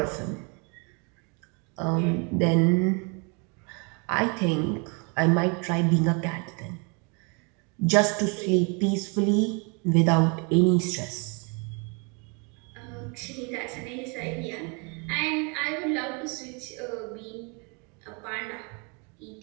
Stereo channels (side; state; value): left; quieter; 33.3 dB